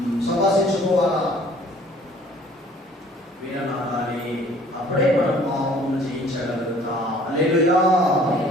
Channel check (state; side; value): normal; both; correlation 0.54